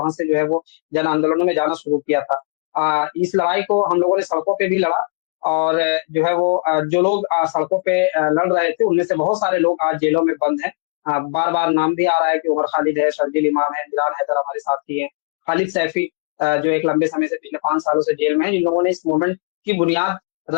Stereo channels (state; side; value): quieter; right; 36.6 dB